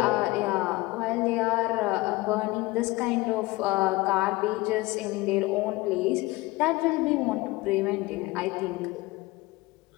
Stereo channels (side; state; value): right; quieter; 20.8 dB